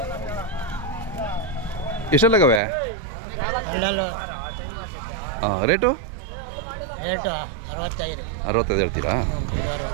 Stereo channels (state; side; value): drops out; left; at 2.6 s